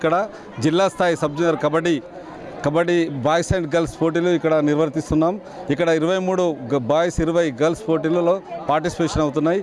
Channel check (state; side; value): identical; both; correlation 1.00